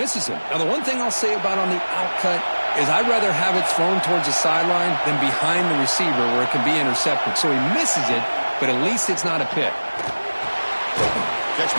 him. Now, the one thing I'll say about on the outcut is I'd rather have it thrown towards the sideline than behind the receiver where it can be intercepted. So he misses it, but at least it's not a pick. Catch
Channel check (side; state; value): both; inverted; correlation -1.00